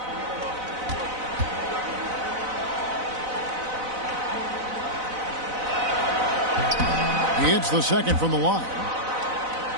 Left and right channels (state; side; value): late; left; 4.0 ms